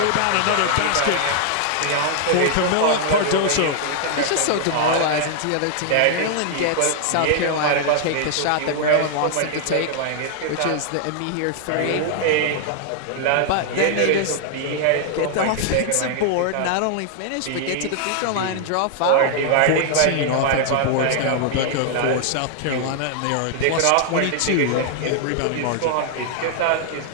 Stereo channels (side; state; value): both; different; correlation 0.00